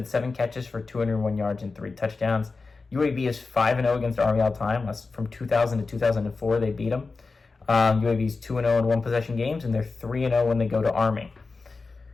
7 catches for 201 yards and 3 touchdowns. UAB is 5-0 against Army all time. That's from 2000 to 2004 they beat them. UAB is 2-0 in one-possession games, and they're 3-0 when they go to Army.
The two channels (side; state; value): right; quieter; 4.1 dB